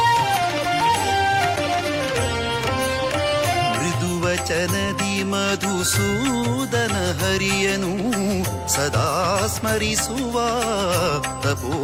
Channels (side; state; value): both; identical; correlation 1.00